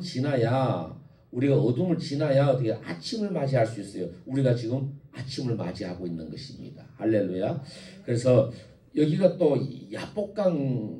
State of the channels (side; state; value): both; identical; correlation 1.00